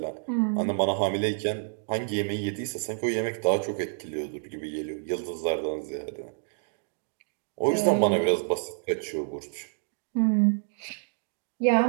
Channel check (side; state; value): left; silent; digital silence